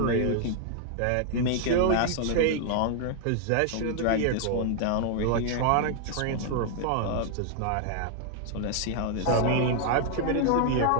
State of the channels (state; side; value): different; both; correlation 0.00